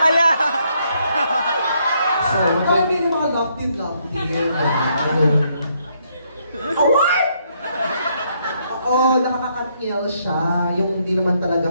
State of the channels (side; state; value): both; inverted; correlation -0.73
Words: Ala! So, kami yung mga love-team. Award! Oo, nakaka-Katniel siya. Yung hindi naman talaga